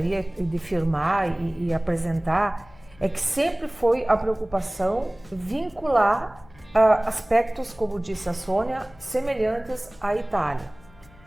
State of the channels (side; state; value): left; noise; hum, 25 dB below the sound